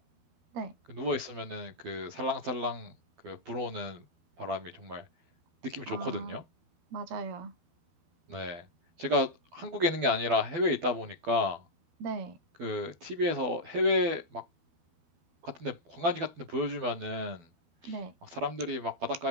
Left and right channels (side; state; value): left; late; 12 ms